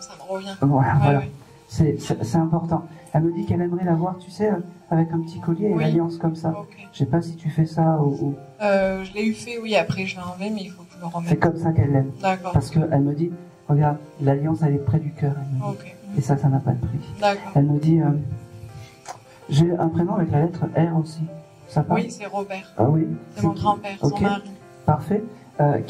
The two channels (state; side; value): identical; both; correlation 1.00